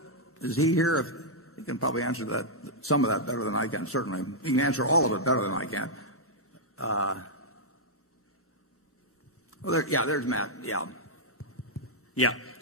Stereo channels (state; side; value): normal; both; correlation -0.07